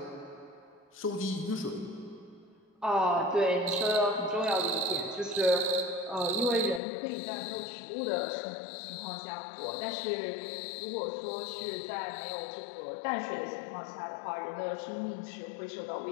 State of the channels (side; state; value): right; drops out; at 6.8 s